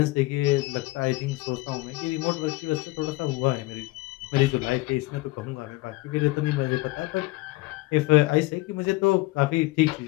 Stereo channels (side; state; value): right; quieter; 20.8 dB